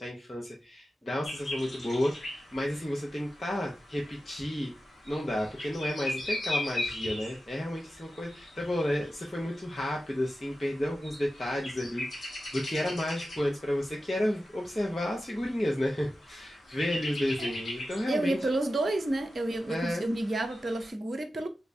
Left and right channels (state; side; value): normal; both; correlation 0.93